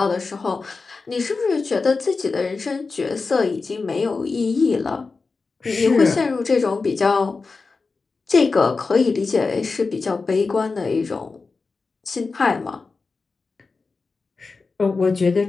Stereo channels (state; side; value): quieter; right; 4.2 dB